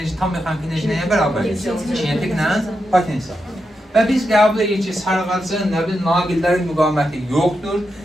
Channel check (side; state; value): both; normal; correlation 0.86